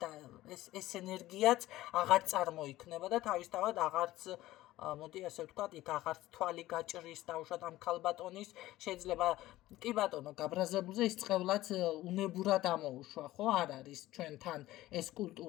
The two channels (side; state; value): right; quieter; 16.2 dB